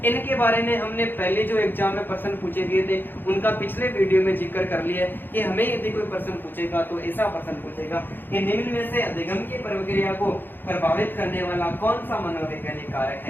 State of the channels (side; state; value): right; late; 0.095 ms